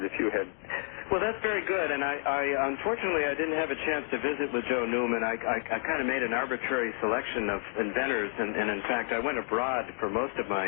if you had... Well, that's very good, and I unfortunately I didn't have a chance to visit with Joe Newman. I kind of made an arbitrary selection of inventors, and in fact I went abroad for most of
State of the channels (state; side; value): silent; right; digital silence